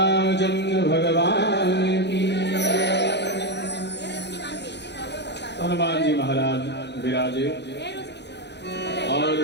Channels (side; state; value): right; late; 0.50 ms